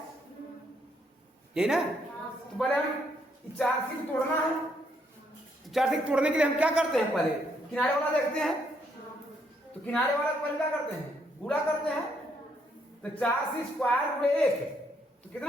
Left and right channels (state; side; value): normal; both; correlation 0.73